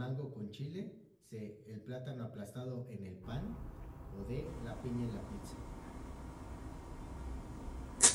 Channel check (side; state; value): both; identical; correlation 1.00